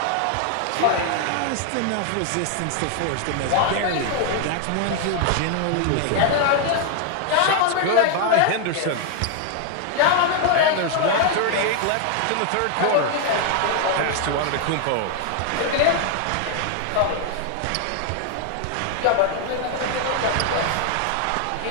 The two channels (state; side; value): different; both; correlation 0.00